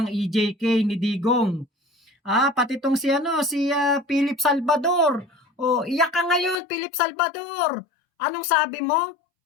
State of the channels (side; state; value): right; drops out; at 6.6 s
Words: EJK ni Digong. Pati itong si Philip Salvador. Iyak ka ngayon, Philip Salvador. Anong sabi mo?